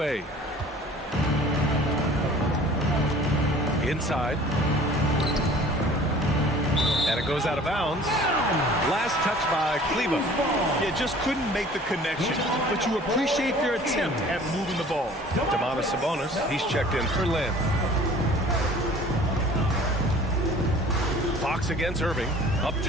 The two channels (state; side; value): normal; both; correlation 0.48